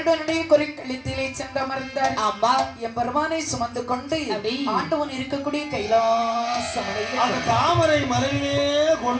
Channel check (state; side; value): identical; both; correlation 1.00